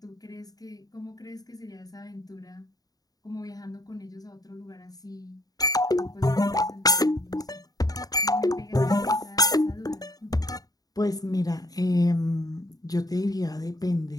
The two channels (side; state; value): right; late; 0.18 ms